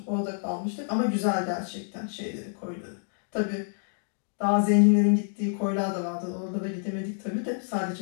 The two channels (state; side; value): silent; right; digital silence